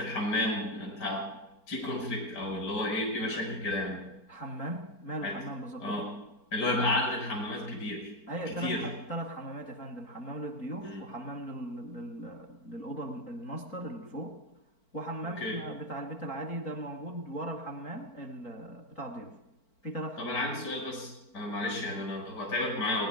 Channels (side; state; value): right; late; 4.5 ms